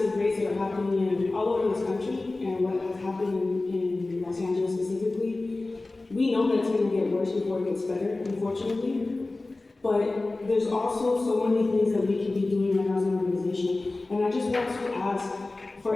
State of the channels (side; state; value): right; quieter; 3.2 dB